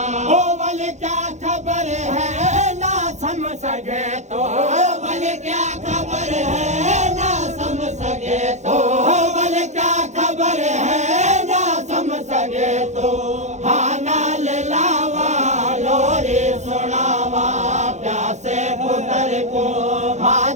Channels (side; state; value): left; late; 0.34 ms